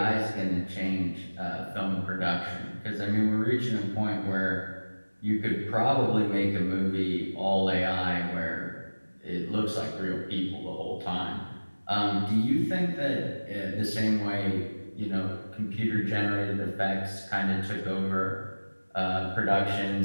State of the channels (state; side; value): inverted; both; correlation -1.00